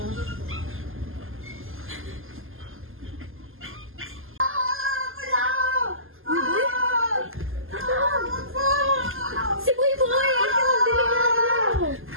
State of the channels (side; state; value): left; late; 0.59 ms